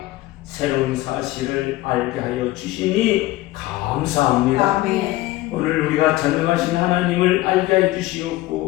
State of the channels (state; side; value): quieter; right; 17.6 dB